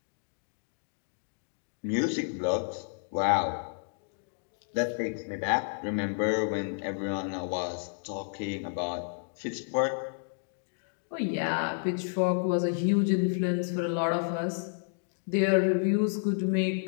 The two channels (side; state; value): right; silent; digital silence